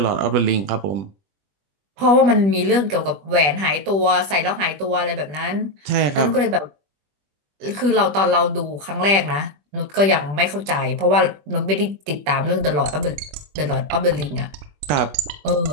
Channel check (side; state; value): left; late; 20 ms